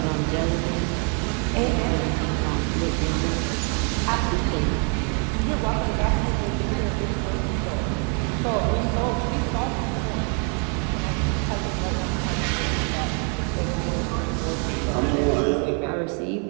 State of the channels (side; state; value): left; quieter; 38.8 dB